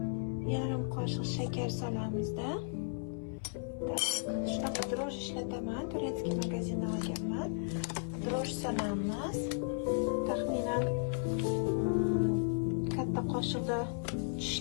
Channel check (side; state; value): right; silent; 54 dB below the other